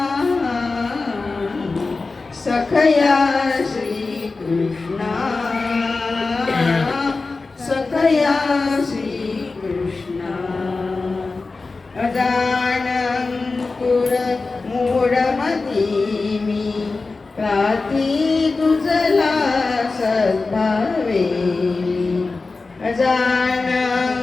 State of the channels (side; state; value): right; quieter; 3.8 dB